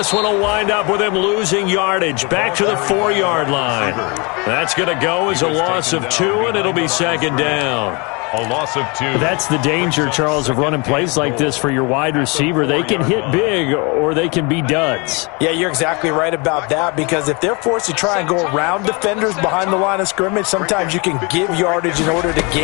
one will wind up with him losing yardage back to the 4-yard line. That's going to go as a loss of 2, and it'll be 2nd down. A loss of 2. That's the danger, Charles, of running plays like this for your wide receiver. They can hit big or they can be duds. Yeah, you're exactly right about that, because if they're forced to try and go around defenders behind the line of scrimmage, sometimes you can give yardage in order to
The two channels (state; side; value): quieter; right; 29.6 dB